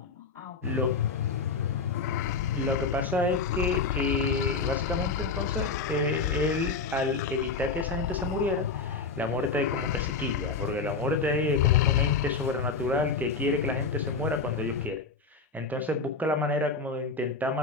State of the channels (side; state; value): right; quieter; 4.5 dB